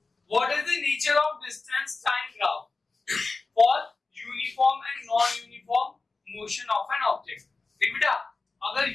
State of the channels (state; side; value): quieter; right; 3.8 dB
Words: What is the nature of distance time graph for uniform and non-uniform motion of an object? देख बेटा, अगर